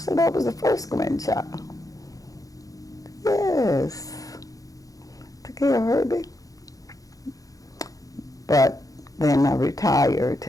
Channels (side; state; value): right; late; 0.17 ms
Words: that was the first grandchild. Yes, took care of Herbie. But then I retired